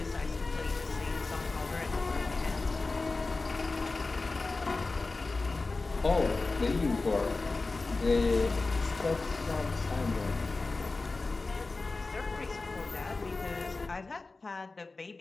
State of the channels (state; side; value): quieter; right; 3.6 dB